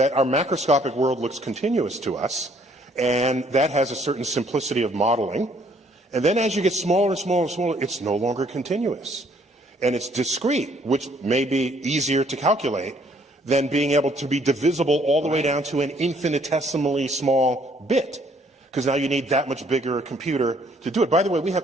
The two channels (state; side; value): normal; both; correlation 0.64